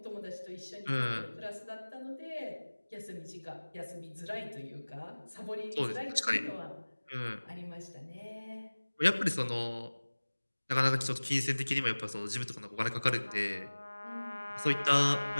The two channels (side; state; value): both; inverted; correlation -1.00